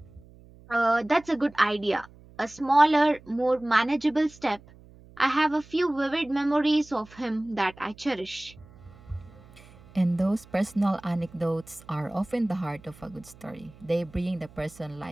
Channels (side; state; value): right; noise; hum, 23 dB below the sound